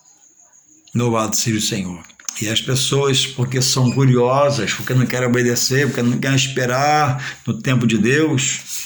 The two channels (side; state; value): both; identical; correlation 1.00